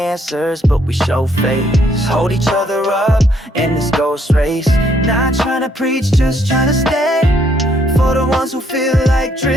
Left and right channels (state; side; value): normal; both; correlation 0.69